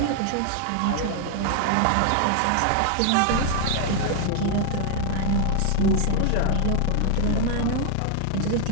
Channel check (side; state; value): both; different; correlation 0.00